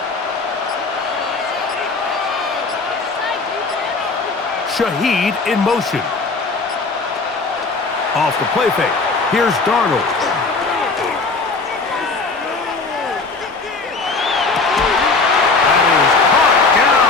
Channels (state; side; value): quieter; right; 4.0 dB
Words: Shaheed in motion. Off the play fake. Here's Darnold. That is caught